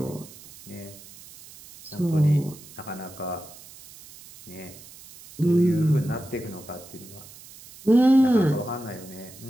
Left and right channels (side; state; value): right; noise; hiss, 19 dB below the sound